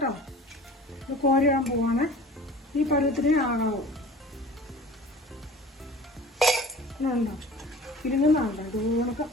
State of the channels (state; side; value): normal; both; correlation 0.43